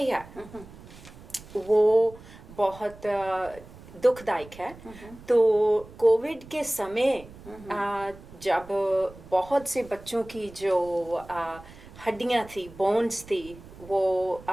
है, वो बहुत दुखदायक है. तो कोविड के समय जब बहुत से बच्चों की जो हड्डियां थी, बोन्स थी, वो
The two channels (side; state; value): right; noise; rumble, 19 dB below the sound